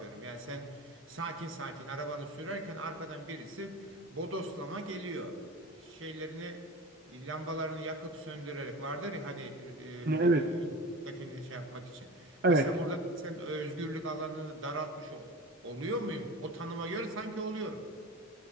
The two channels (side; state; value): both; normal; correlation 0.33